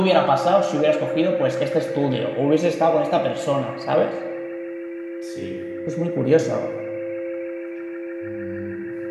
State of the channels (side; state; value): both; identical; correlation 1.00